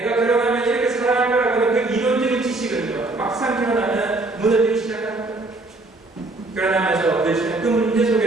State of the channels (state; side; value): quieter; left; 3.0 dB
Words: 결혼하면 이렇게 사랑할 거라고 하는 그 이론적인 지식은요, 막상 결혼하면 무너지기 시작합니다. 결혼하면서 부딪히는 그 문제